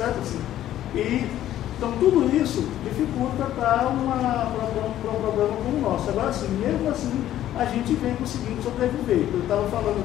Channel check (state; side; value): quieter; right; 12.5 dB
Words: assim? Então tudo isso dificulta para um programa como o nosso. Agora assim, mesmo assim, a gente vem conseguindo sobreviver. Eu estava falando